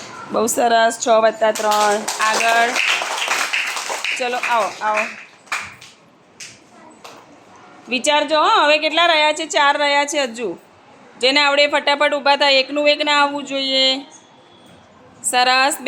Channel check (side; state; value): both; identical; correlation 1.00